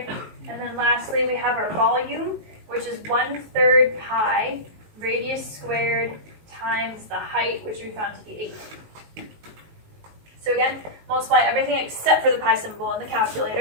And then lastly, we have our volume, which is 1/3 pi radius squared times the height, which we found to be 8. So again, multiply everything except for the pi symbol in the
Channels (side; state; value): left; late; 19 ms